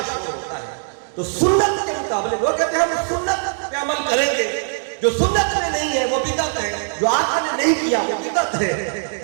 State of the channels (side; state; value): left; silent; digital silence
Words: شور ہوتا ہے۔ تو سنت کے مقابلے وہ کہتے ہیں ہم سنت پہ عمل کریں گے، جو سنت میں نہیں ہے وہ بدعت ہے، جو آقا نے نہیں کیا وہ بدعت